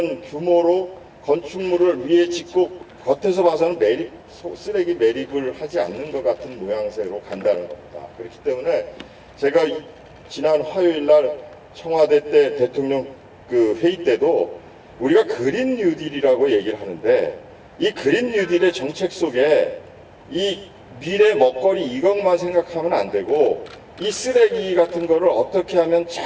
규모로 건축물을 위에 짓고 겉에서 봐서는 쓰레기 매립을 하지 않는 것 같은 모양새로 간다는 겁니다. 그렇기 때문에 제가 지난 화요일 날 청와대 때 대통령 그 회의 때도 우리가 그린 뉴딜이라고 얘기를 하는데 이 그린 뉴딜의 정책 속에 이 미래 먹거리 이것만 생각하면 안 되고 이 쓰레기 같은 거를 어떻게 하면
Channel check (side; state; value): both; identical; correlation 1.00